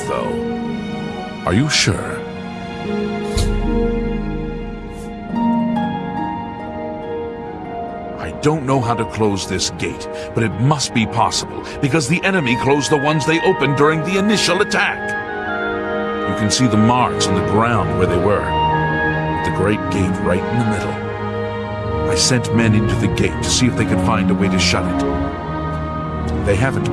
though. Are you sure? I don't know how to close this gate, but it must be possible, because the enemy closed the ones they opened during the initial attack. You can see the marks on the ground where they were, with the great gate right in the middle. I sent men into the gate to see if they could find a way to shut it. They haven't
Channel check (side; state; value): both; identical; correlation 1.00